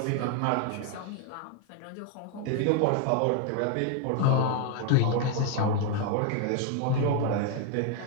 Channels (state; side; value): different; both; correlation 0.01